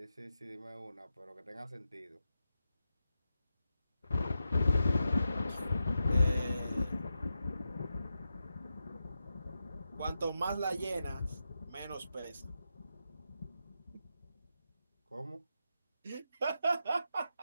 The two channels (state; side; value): inverted; both; correlation -0.88